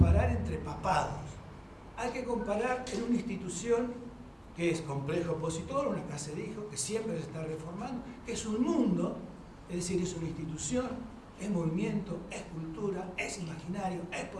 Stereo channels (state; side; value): identical; both; correlation 1.00